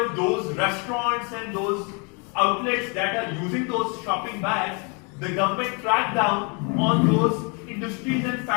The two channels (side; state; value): right; quieter; 34.2 dB